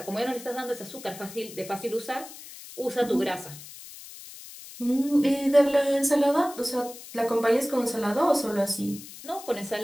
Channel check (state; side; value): noise; left; hiss, 15 dB below the sound